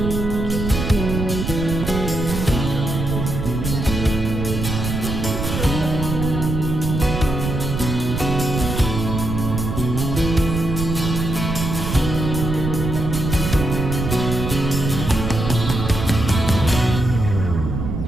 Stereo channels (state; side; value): noise; right; rumble, 3 dB below the sound